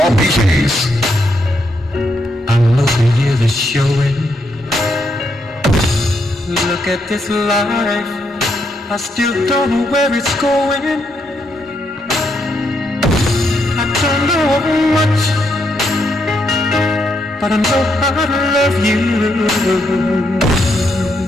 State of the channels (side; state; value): both; normal; correlation 0.78